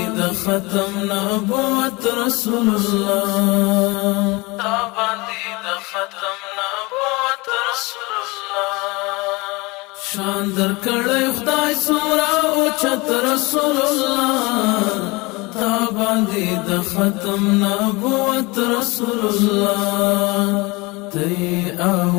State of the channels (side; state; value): right; quieter; 24.5 dB